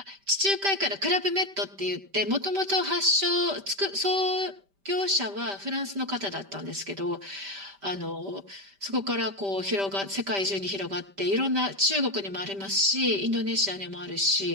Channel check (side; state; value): left; late; 5.1 ms